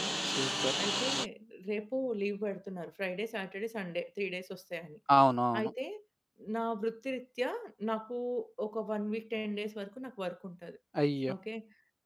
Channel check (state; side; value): identical; both; correlation 1.00